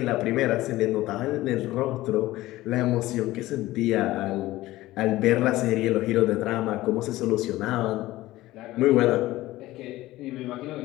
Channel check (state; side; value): quieter; right; 17.0 dB